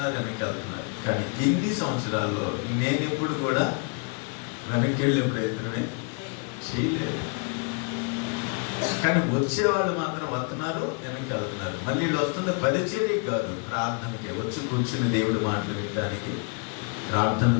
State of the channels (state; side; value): quieter; right; 36.0 dB